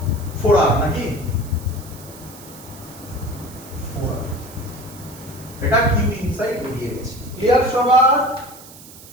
4r নাকি? 4r। এটা কিউ ইনসাইড বেরিয়ে গেছে। ক্লিয়ার সবার?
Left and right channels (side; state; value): right; noise; hiss, 18 dB below the sound